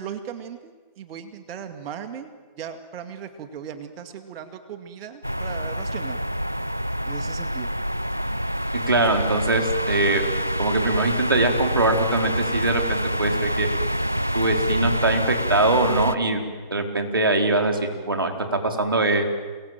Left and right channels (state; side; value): inverted; both; correlation -0.53